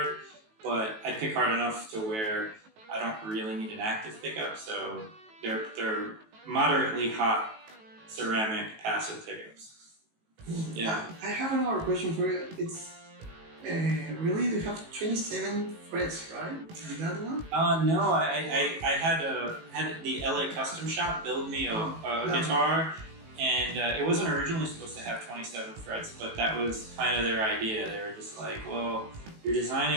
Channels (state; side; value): late; left; 18 ms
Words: but I pick hard enough to where I don't really need an active pickup, so they're moderately hot ceramic passive pickups. Yeah. I have another question for you. It's really, you have 27 frets, right? And that one? No, I had the LA Custom Shop build me a guitar, and it wasn't originally supposed to have 27 frets, but that was kind of their idea. They were just like, well, you're